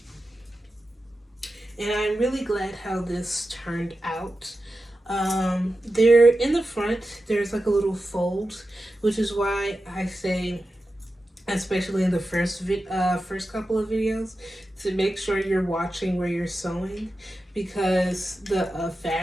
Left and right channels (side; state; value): both; normal; correlation 0.92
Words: And I'm really glad how this turned out. There in the front, there's like a little fold, which is why I say, especially in the first couple of videos, to make sure you're watching where you're sewing, because the